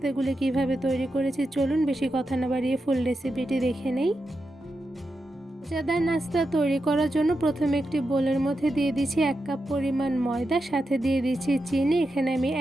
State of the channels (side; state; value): both; normal; correlation 0.88